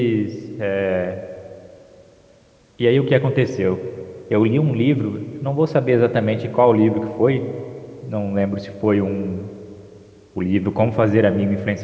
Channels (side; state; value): both; identical; correlation 1.00